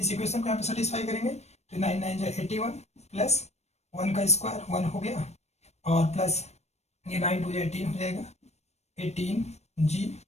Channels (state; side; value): late; right; 0.31 ms